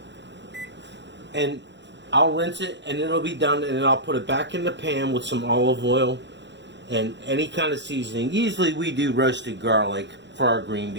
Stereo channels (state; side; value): late; left; 0.52 ms